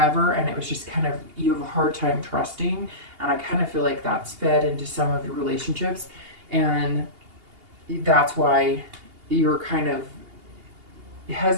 and it was just kind of, you have a hard time trusting. And I kind of feel like that's fed into some of your relationships, and that's why you're kind of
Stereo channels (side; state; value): left; late; 2.8 ms